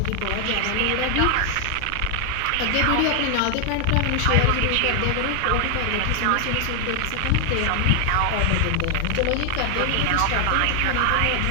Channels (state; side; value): different; both; correlation 0.00